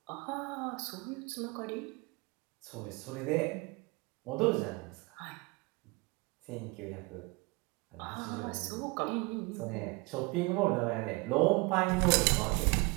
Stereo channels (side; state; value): left; quieter; 26.3 dB